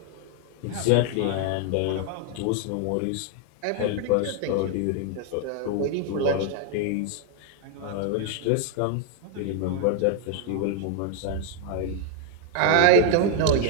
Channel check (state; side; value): different; both; correlation 0.00